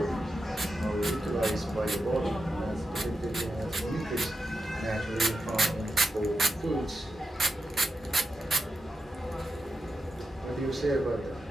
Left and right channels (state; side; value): normal; both; correlation 0.89